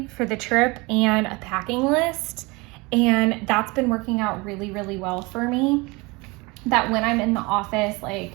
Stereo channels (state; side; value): quieter; left; 25.4 dB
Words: for the trip and a packing list. And that's been working out really, really well for me. That when I'm in the office,